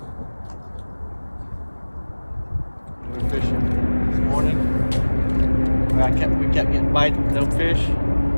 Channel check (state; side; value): inverted; both; correlation -1.00